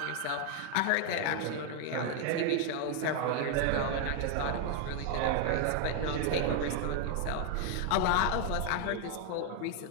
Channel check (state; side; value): different; both; correlation 0.01